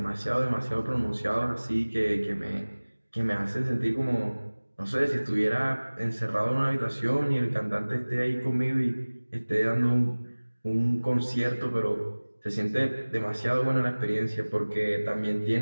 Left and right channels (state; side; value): inverted; both; correlation -1.00